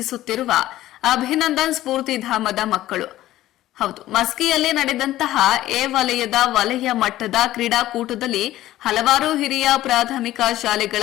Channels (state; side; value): quieter; right; 14.7 dB